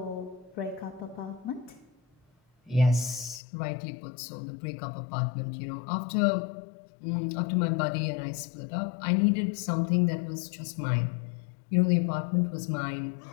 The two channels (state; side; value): drops out; right; at 3.4 s